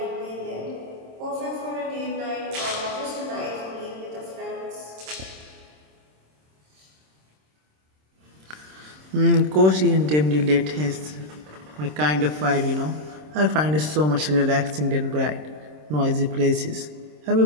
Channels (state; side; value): late; left; 26 ms